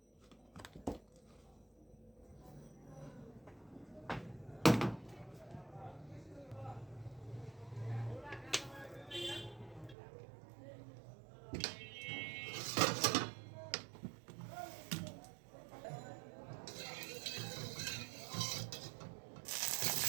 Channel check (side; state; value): left; drops out; at 10.0 s